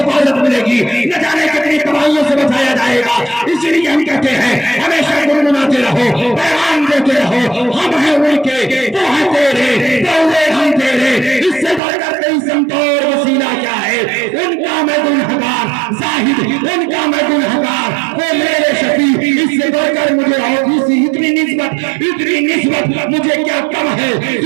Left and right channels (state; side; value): drops out; left; at 11.8 s